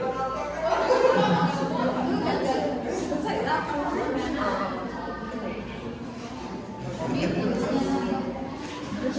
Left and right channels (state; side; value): identical; both; correlation 1.00